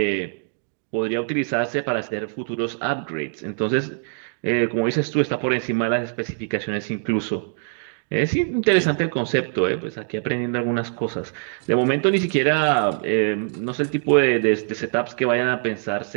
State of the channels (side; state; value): left; silent; 63 dB below the other